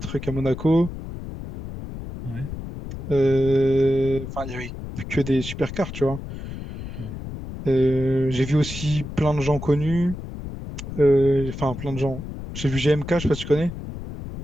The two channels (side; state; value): left; noise; rumble, 9 dB below the sound